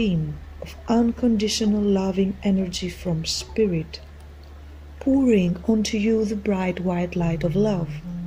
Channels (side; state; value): both; identical; correlation 1.00